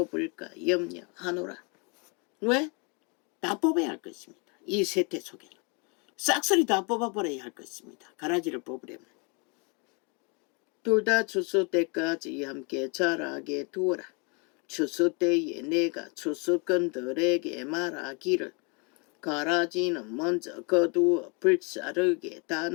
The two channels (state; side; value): quieter; right; 33.1 dB